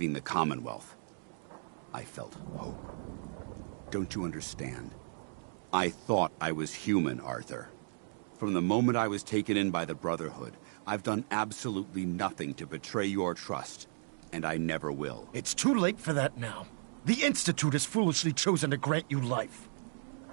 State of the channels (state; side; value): silent; left; digital silence